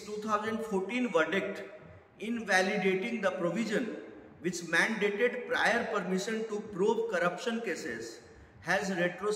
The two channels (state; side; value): identical; both; correlation 1.00